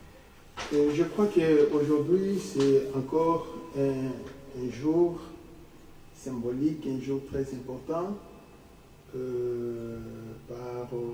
Et je crois qu'aujourd'hui, c'est encore un jour symbolique, un jour très important par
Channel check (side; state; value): both; identical; correlation 1.00